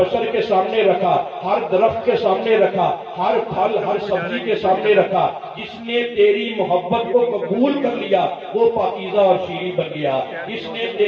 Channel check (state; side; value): identical; both; correlation 1.00